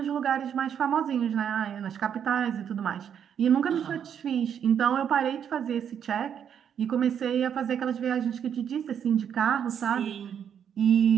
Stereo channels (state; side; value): quieter; left; 8.5 dB